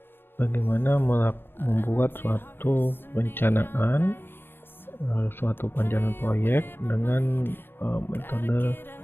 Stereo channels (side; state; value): right; late; 0.10 ms